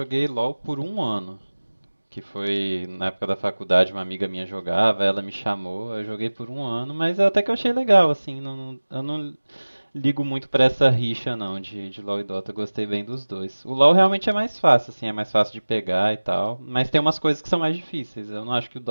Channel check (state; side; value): inverted; both; correlation -1.00